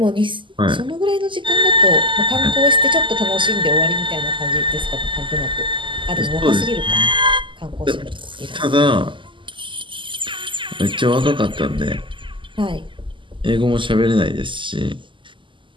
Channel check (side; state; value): left; late; 0.24 ms